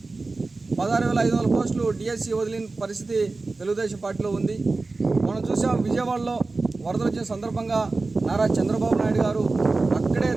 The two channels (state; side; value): quieter; left; 3.6 dB